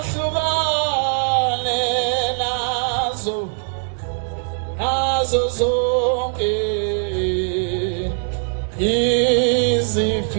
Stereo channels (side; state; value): left; silent; digital silence